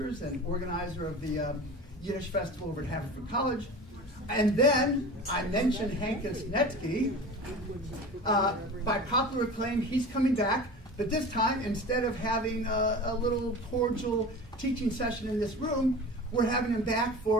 and organizer of the Yiddish Festival over at Haverford College. And then I mentioned Hankus Netsky. By popular acclaim, he's coming back, but this time, instead of having a little cordial teaching session in this room, we're having him back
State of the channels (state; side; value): normal; both; correlation 0.35